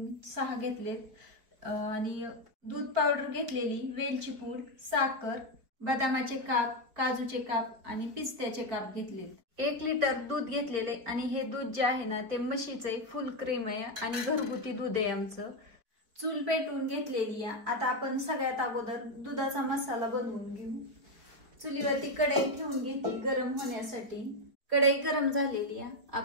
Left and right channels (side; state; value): left; late; 4.7 ms